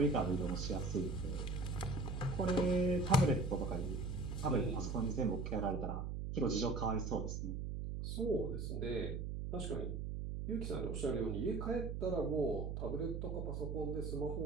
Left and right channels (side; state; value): right; noise; hum, 3 dB below the sound